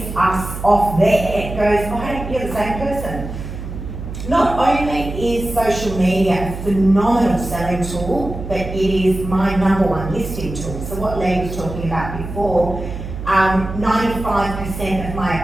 us off there goes, oh, hey, you're the same person. Not only is social media a phenomenal selling tool, but it is my #1 listing tool. So what Lee was talking about before, 95% of my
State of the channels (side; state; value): right; noise; hum, 8 dB below the sound